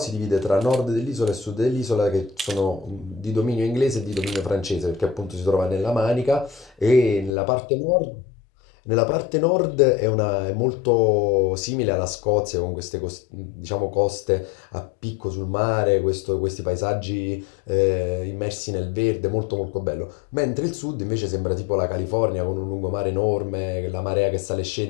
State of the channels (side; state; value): right; drops out; at 7.4 s